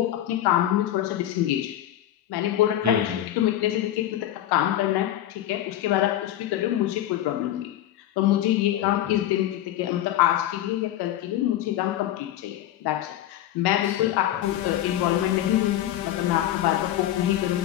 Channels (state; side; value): quieter; right; 12.6 dB